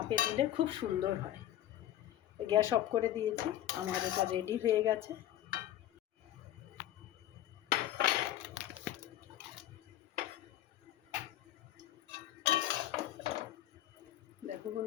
দিলে খুব সুন্দর হয়। গ্যাস অফ করে দিয়েছি, আমার এটা রেডি হয়ে গেছে। দেখো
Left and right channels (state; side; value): quieter; right; 12.7 dB